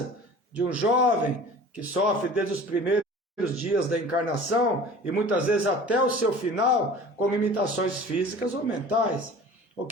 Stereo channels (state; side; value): normal; both; correlation 0.42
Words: de um jovem que sofre desde os primeiros dias da encarnação e muitas vezes até o seu final com limitações físicas ou mentais, ou